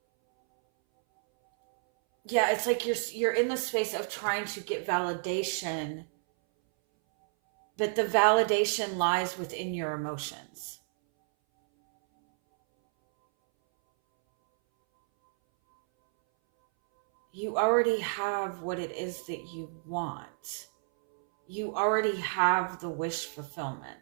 yeah, it's like you're in the space of trying to get validation, but the validation lies within your emotions. You already have what it is that you want. You already have the wish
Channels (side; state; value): left; silent; 58 dB below the other